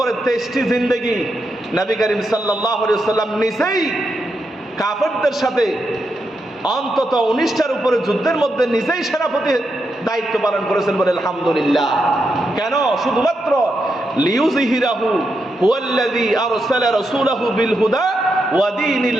23টি জিন্দেগি নবী করিম সাল্লাল্লাহু আলাইহি ওয়াসাল্লাম নিজেই কাফেরদের সাথে অন্তত 19টার উপরে যুদ্ধের মধ্যে নিজেই সেনাপতি দায়িত্ব পালন করেছেন, বলে আলহামদুলিল্লাহ। কেন? শুধুমাত্র লিইউযহিরাহু হুয়াল্লাযী আরসালা রাসূলাহু বিল হুদা ওয়া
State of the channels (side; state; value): both; normal; correlation 0.84